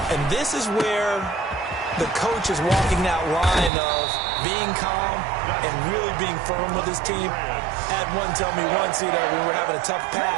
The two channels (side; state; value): left; drops out; at 3.7 s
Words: And this is where the coach is walking that line of being calm and really being firm with his team. I had one tell me once, when we were having a tough